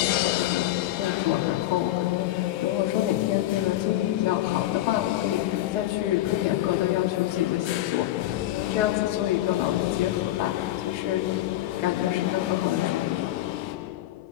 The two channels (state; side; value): quieter; right; 14.8 dB